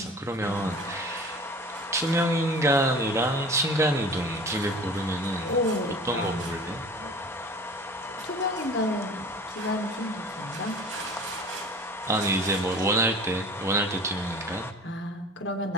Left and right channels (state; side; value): normal; both; correlation 0.41